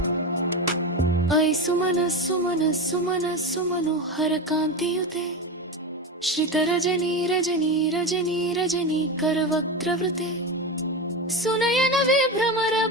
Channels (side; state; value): both; normal; correlation 0.20